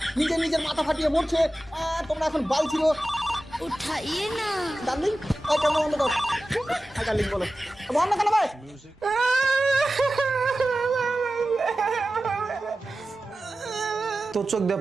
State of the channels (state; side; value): normal; both; correlation 0.95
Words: নিজের মাথা ফাটিয়ে মরছে। তোমরা এখন বাল ছিল उठाइए ना। ডার্লিং। ওই কেমন বন্ধ কর। ডার্লিং বলো বন্ধ কেন ভাই? তোর চোখ দিয়ে